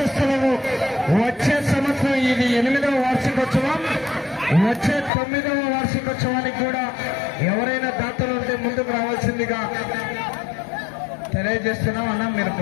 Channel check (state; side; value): drops out; right; at 5.1 s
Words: వచ్చే సంవత్సరం ఇది 8వ వార్షికోత్సవం, వచ్చే 9వ వార్షికోత్సవానికి కూడా ఎవరైనా దాతలు ఉంటే ముందుకు రావాల్సిందిగా తెలియజేస్తున్నాం. అన్న మీరు